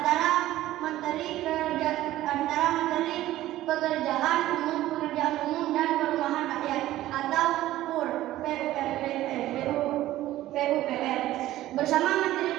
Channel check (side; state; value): left; quieter; 14.9 dB